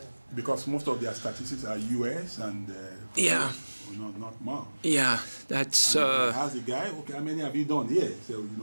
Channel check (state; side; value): inverted; both; correlation -1.00